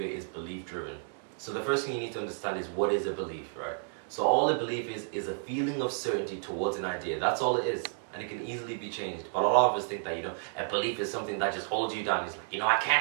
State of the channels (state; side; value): silent; left; digital silence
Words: is belief driven. So the first thing you need to understand is what is a belief, right? So all a belief is a feeling of certainty towards an idea. That's all it is. And it can easily be changed. But a lot of us think that, a belief is something that just holds you down. It's like, I